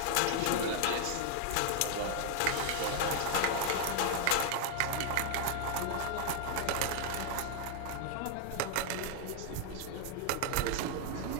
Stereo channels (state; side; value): different; both; correlation 0.00